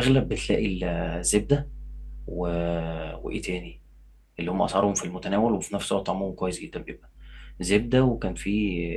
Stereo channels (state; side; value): identical; both; correlation 1.00